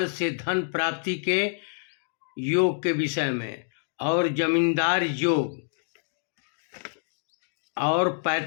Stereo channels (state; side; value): silent; right; digital silence